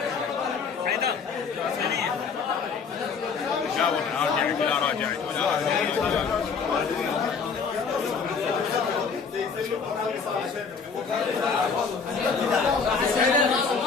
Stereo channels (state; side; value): quieter; right; 5.5 dB